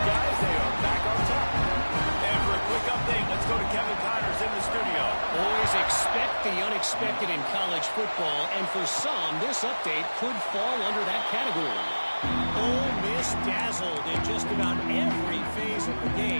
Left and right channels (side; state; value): both; inverted; correlation -1.00